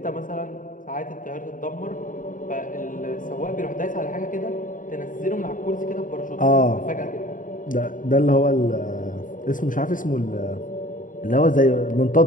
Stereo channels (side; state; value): right; late; 0.38 ms